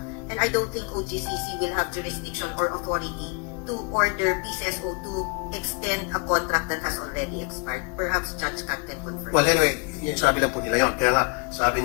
And I don't think OGCC will have jurisdiction or authority to order PCSO to extend a contract that has already expired. Perhaps Judge Kat can confirm. Well, anyway, yung sabi lang po nila yun. Kaya nga, sabi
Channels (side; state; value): right; quieter; 35.6 dB